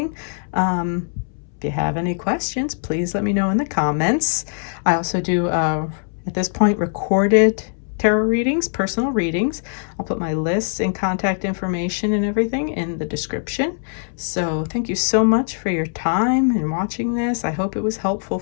If you have any questions, please let me know in the comments. I also do, at this point, recorded tarot readings, personal readings. I'll put my lists and contact information and everything in the description. So thank you so much for your time and watching this. I hope it was helpful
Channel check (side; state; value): right; silent; 65 dB below the other